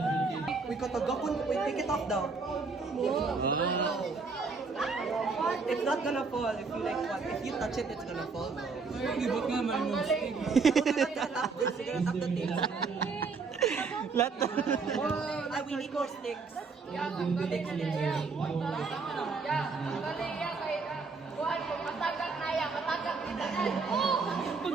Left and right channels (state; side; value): quieter; left; 4.6 dB